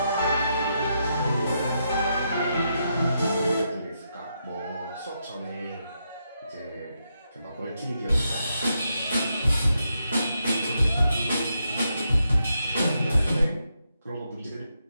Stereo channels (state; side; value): inverted; both; correlation -0.82